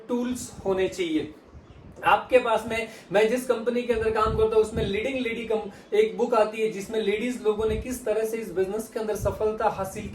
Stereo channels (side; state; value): both; identical; correlation 1.00